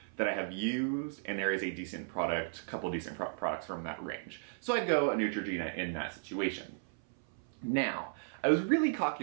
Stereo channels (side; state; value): left; silent; 54 dB below the other